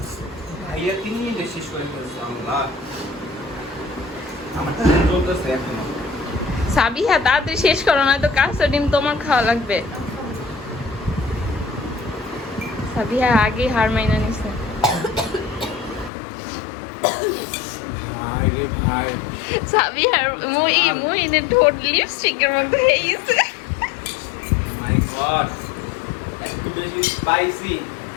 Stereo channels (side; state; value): right; drops out; at 16.1 s